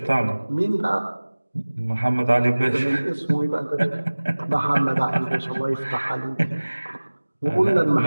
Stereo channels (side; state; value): both; inverted; correlation -1.00